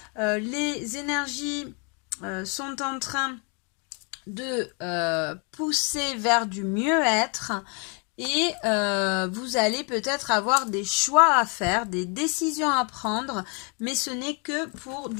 les énergies sont en train de pousser vers du mieux-être et vous allez peut-être avoir des choix à faire, des décisions à prendre, mais ce n'est que pour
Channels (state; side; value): quieter; right; 35.7 dB